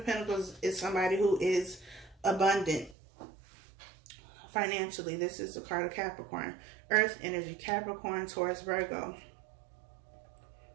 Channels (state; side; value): drops out; left; at 3.0 s